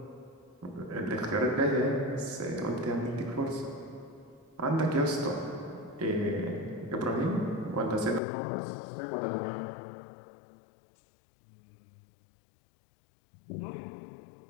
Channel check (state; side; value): drops out; right; at 8.2 s